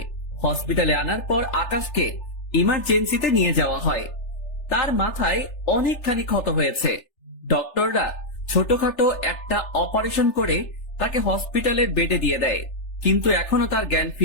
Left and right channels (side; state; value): right; late; 3.4 ms